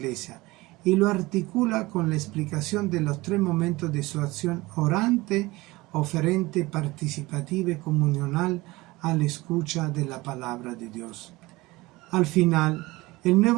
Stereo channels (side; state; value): left; quieter; 20.9 dB